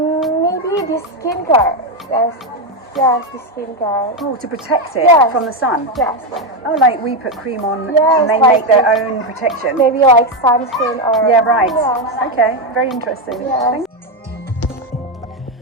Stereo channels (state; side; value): normal; both; correlation 0.08